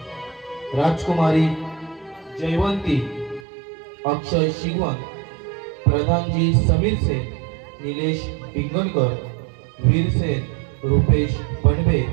राजकुमारी जयवंती अक्षय शिगवण प्रधानजी समीर सेन निलेश डिंगणकर वीरसेन रुपेश पणबे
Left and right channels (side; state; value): left; drops out; at 3.4 s